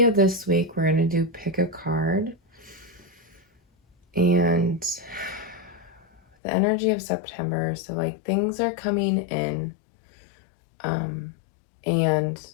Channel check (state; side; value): drops out; right; at 6.2 s